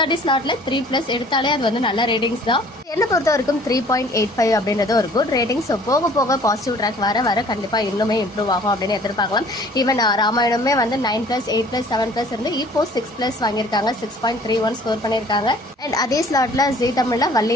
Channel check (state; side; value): normal; both; correlation 0.53